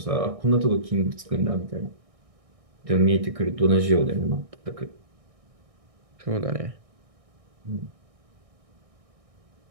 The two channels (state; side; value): late; left; 1.6 ms